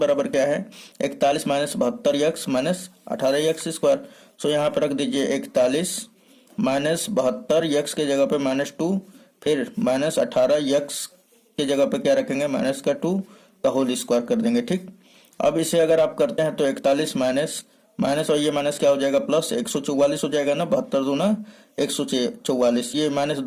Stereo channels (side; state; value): both; identical; correlation 1.00